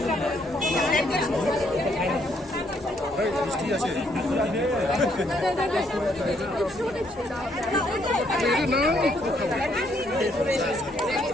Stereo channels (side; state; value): both; normal; correlation 0.71